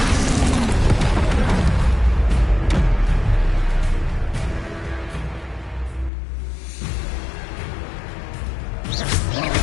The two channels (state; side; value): drops out; right; at 6.1 s